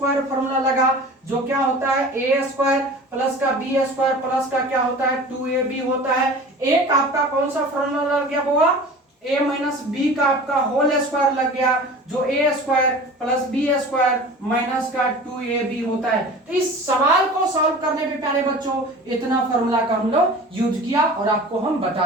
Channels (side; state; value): both; normal; correlation 0.39